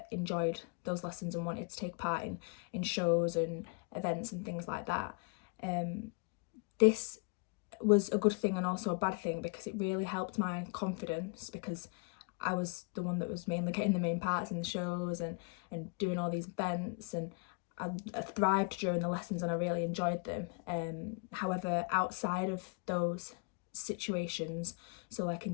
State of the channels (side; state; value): right; quieter; 32.8 dB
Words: enjoyed those lessons and wanted to take part in shows and events and things like that. This was a good thing and also a bad thing, because it really helped my confidence, because I was the one that was mainly getting the main parts in the shows and doing all these events, and I thrived during the lessons and I really enjoyed them. However, outside of those situations, so like